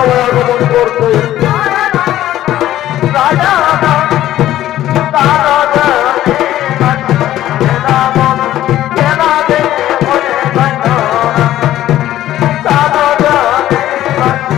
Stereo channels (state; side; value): quieter; right; 13.4 dB